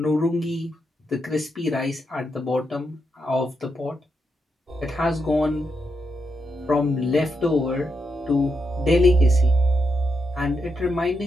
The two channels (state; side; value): normal; both; correlation 0.83